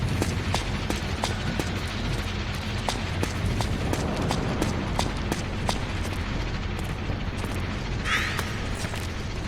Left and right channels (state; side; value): identical; both; correlation 1.00